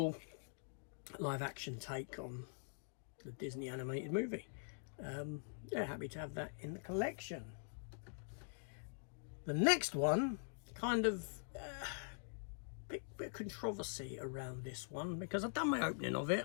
live action take on the Disney animated movie. Yeah, happy to have that in the collection. The next one, kind of bit of controversy around this one, because I've done my opening of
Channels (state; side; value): silent; right; digital silence